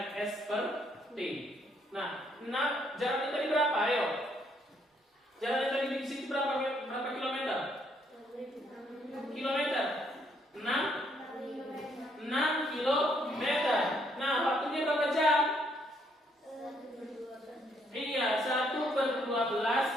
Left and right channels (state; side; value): normal; both; correlation 0.70